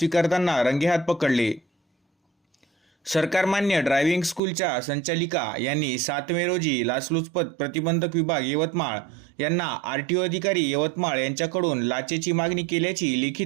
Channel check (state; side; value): drops out; left; at 4.4 s